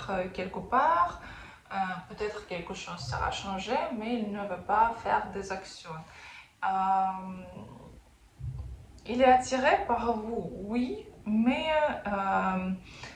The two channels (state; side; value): identical; both; correlation 1.00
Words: quelque part. Peut-être quelque chose sera changé, mais il ne veut pas faire des actions. Il est attiré par vous, oui, mais